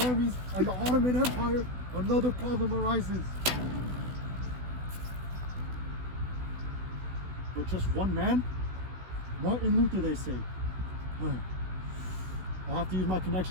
armies and the Ottoman Empire, another problem arises. But just one man? Martin Luther, they say. I'll have to use my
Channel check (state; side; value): late; left; 16 ms